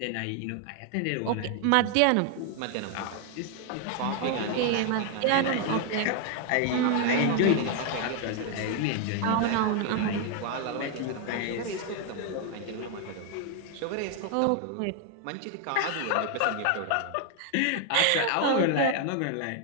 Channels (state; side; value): different; both; correlation 0.00